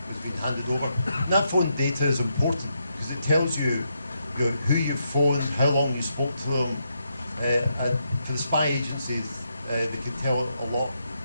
was being handed over. And that phone data is important because it tells you, who you phoned, how long you spoke to them, and for the spy agencies, they can tell a lot.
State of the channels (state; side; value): inverted; both; correlation -0.80